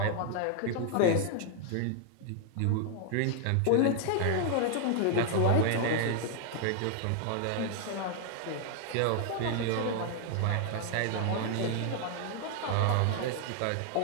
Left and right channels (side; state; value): both; different; correlation 0.00